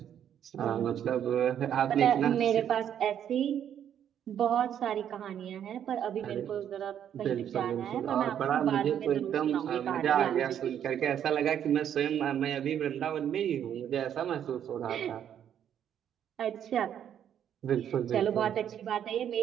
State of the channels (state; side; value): quieter; left; 9.5 dB